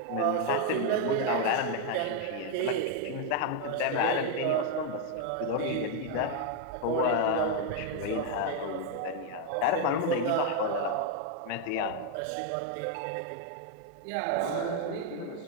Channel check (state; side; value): different; both; correlation 0.01